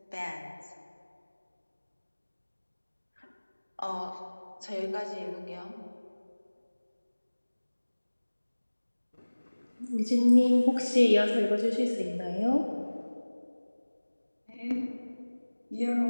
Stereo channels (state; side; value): inverted; both; correlation -1.00